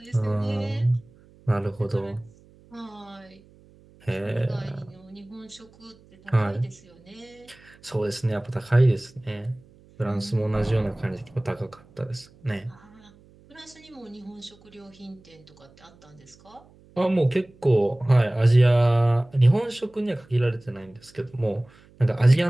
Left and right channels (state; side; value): noise; right; hum, 27 dB below the sound